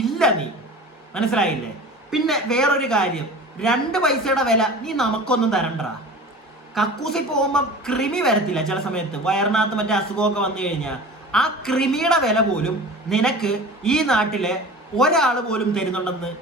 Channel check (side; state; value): both; normal; correlation 0.38